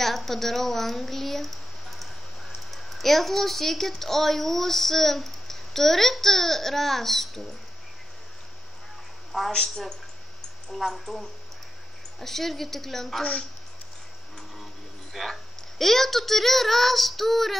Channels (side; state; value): both; normal; correlation 0.88